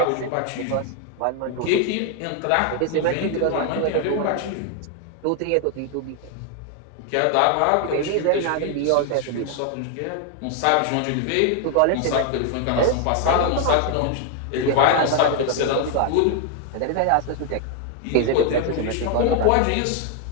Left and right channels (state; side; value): different; both; correlation 0.00